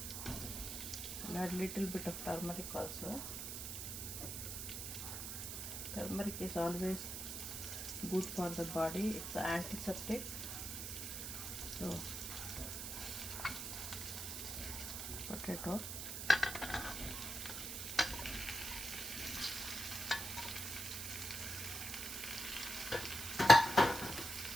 We'll add little bit of turmeric also. Turmeric is always good for the body, it's an antiseptic. So potato,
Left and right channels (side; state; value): right; noise; hiss, 5 dB below the sound